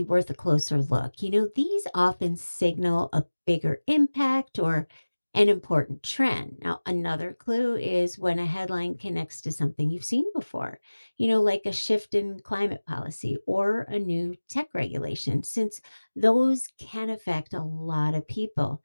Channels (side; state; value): both; inverted; correlation -1.00